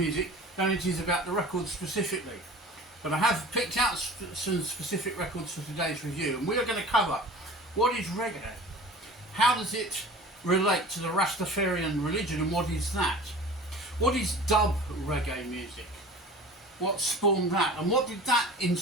than it is about the records specifically. But I have picked out some specific records for today's review, and we are going to cover what is reggae, how does it relate to the Rastafarian religion, and what is that? What is dub reggae music? What spawned that, and what did that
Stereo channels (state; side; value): normal; both; correlation 0.40